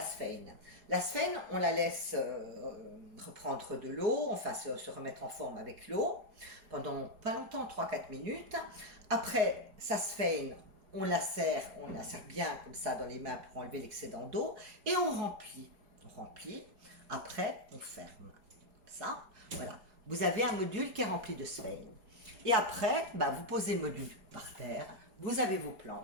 sphène. La sphène, on la laisse reprendre de l'eau, enfin se remettre en forme avec l'eau, pendant pas longtemps, 3-4 minutes. Après, sa sphène, on la serre bien comme ça dans les mains pour enlever l'excédent d'eau, et on remplit. On remplit, après, on ferme. Ça, voilà. Vous avez un module qui est rempli de sphène. Et après, bah, vous posez le module par terre, vous avez vos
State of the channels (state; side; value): late; left; 4.8 ms